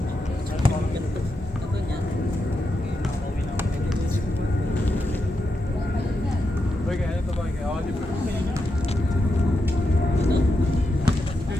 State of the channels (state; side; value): normal; both; correlation 0.85